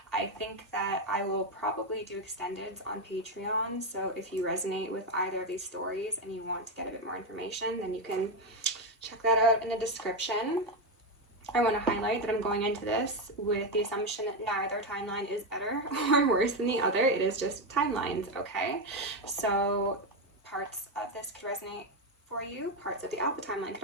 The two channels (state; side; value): normal; both; correlation 0.09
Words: I think that I will probably do extendeds on Patreon, so if you resonate with either of these stories and you want to get a bit more information, then you can check that out in the description. I want to highlight that I'm going into this with the assumption that neither timeline is better or worse than the other. It is just timelines, okay? So parts of this could resonate for you. Parts of the Alpha timeline